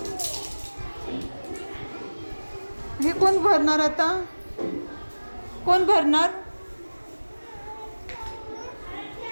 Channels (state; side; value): inverted; both; correlation -1.00